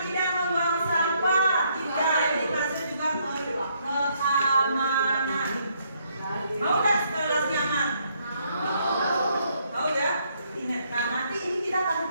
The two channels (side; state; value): both; inverted; correlation -0.71